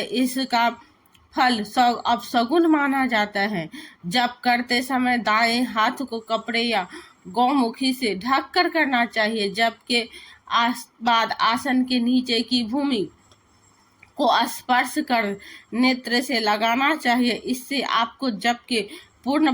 इसका फल अपशगुन माना जाता है। जप करते समय दाएं हाथ को कपड़े या गौमुखी से ढक कर करना चाहिए। जप के बाद आसन के नीचे की भूमि को स्पर्श कर नेत्र से लगाना चाहिए। इससे आपको जप के पूर्ण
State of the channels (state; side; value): identical; both; correlation 1.00